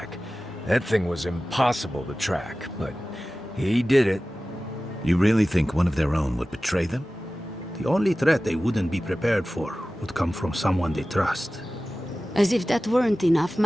That thing was impossible to track, but he did it. You really think one of their own would betray them? The only threat they wouldn't be prepared for would come from someone they trust. As if that weren't enough,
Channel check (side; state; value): both; normal; correlation 0.96